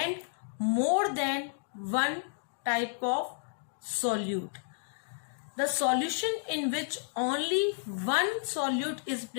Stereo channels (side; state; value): right; silent; digital silence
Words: more than 1 type of solute. The solution in which only one solute is